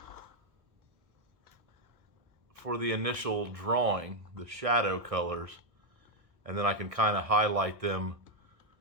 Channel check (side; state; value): left; late; 1.6 ms